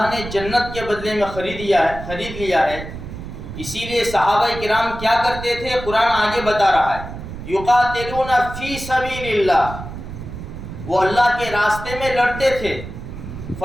نے جنت کے بدلے میں خرید لیا ہے. اسی لیے صحابہ کرام کیا کرتے تھے؟ قرآن آگے بتا رہا ہے یقاتلون فی سبیل اللہ، وہ اللہ کے راستے میں لڑتے تھے.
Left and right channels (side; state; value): right; noise; rumble, 10 dB below the sound